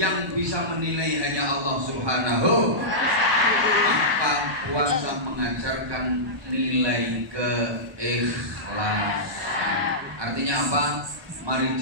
bisa menilai hanya Allah Subhanahu. Maka puasa mengajarkan nilai keikhlasan. Artinya apa? Mari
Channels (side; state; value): left; late; 1.2 ms